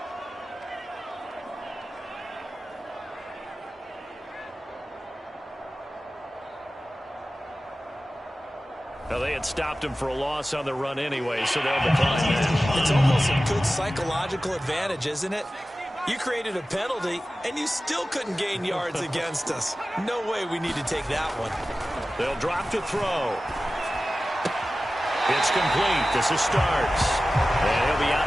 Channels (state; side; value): normal; both; correlation 0.95